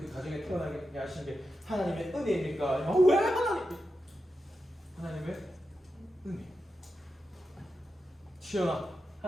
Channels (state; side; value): normal; both; correlation 0.89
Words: 가정에 태어나게 하신 게 하나님의 은혜입니까? 아니면 왜 하나님의 은혜. 치열한